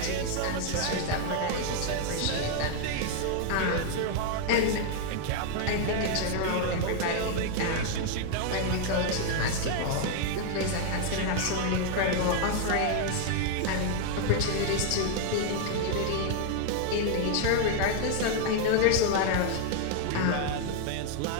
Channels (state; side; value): different; both; correlation 0.00